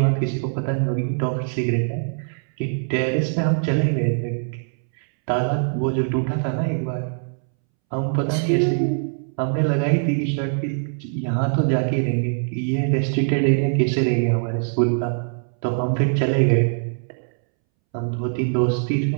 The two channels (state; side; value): silent; left; 64 dB below the other